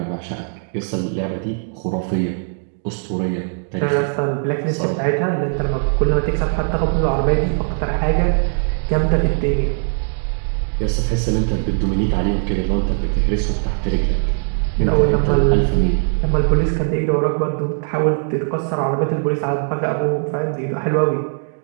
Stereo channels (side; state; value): left; silent; digital silence